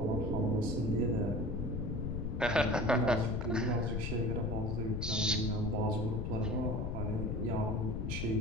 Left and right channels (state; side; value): noise; left; rumble, 1 dB below the sound